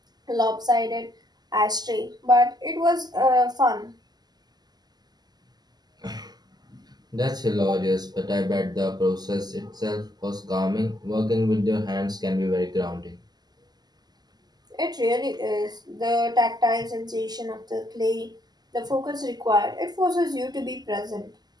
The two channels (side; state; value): left; late; 0.20 ms